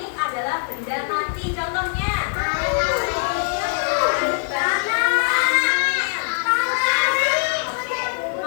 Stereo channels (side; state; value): right; silent; digital silence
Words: adalah benda mati. Contohnya